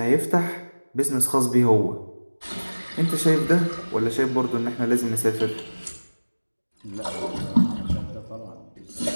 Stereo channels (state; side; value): inverted; both; correlation -1.00